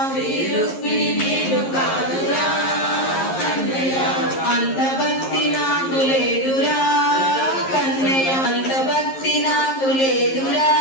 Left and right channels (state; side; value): late; right; 11 ms